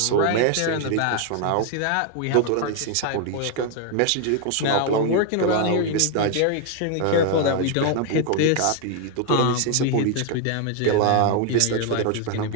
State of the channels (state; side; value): different; both; correlation 0.00